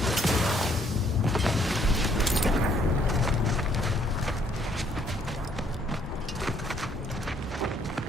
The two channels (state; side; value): normal; both; correlation 0.66